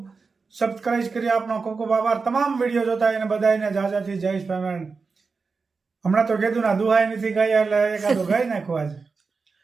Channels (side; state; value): left; quieter; 4.6 dB